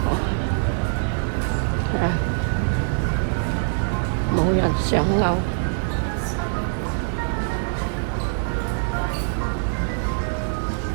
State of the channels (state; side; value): silent; left; digital silence